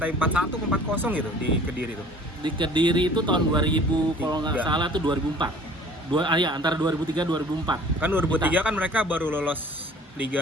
4-1 ke 4-0 gitu di Kediri tuh. Di Kediri itu tahun 2000 kalau nggak Tiga. salah tuh 2004. Ya antara 2003 2004. Kan 2003 kan mereka baru lolos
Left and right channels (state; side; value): normal; both; correlation 0.49